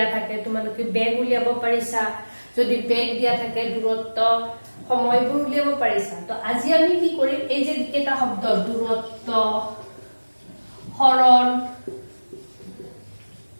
থাকে তোমালোকে বেগ উলিয়াব পাৰিছা। যদি বেগ দিয়া থাকে দূৰত্ব সময়বোৰ উলিয়াব পাৰিছা। তো আজি আমি কি কৰিম, এই যে কেইটা শব্দ দূৰত্ব, হৰণ,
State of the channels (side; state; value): both; inverted; correlation -1.00